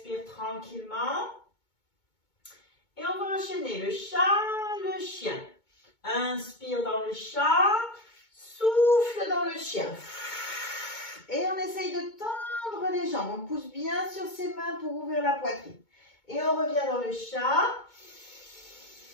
tranquillement. Et on va enchaîner le chat, le chien. Inspire dans le chat, souffle dans le chien. Et on essaye de tendre les jambes. On pousse bien sur ses mains pour ouvrir la poitrine. Et on revient dans le chat.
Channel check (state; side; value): late; right; 2.2 ms